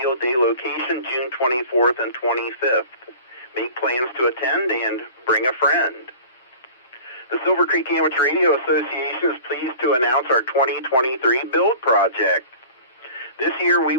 Day location June 24th and 25th. Make plans to attend and bring a friend. The Silvercreek Amateur Radio Association is pleased to announce our 2023 build project. This year we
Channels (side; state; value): both; inverted; correlation -0.42